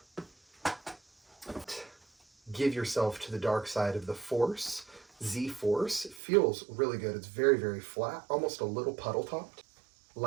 Give yourself to the dark side of the Force. Z Force. Feels really good. It's very, very flat, almost a little puddle topped.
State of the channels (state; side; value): drops out; left; at 6.2 s